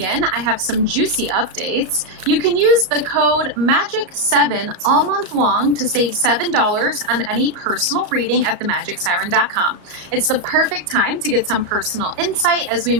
I have some juicy updates. You can use the code MAGIC7 all month long to save $7 on any personal reading at themagicsiren.com. It's the perfect time to get some personal insight as we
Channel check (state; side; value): late; left; 34 ms